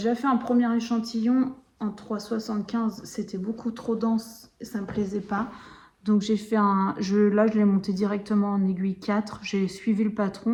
fait un premier échantillon en 3,75. C'était beaucoup trop dense et ça me plaisait pas. Donc j'ai fait là je l'ai monté directement en aiguille 4, j'ai suivi le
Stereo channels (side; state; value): both; identical; correlation 1.00